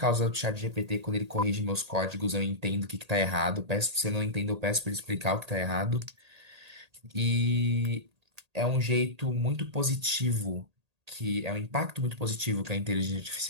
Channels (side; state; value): left; late; 1.8 ms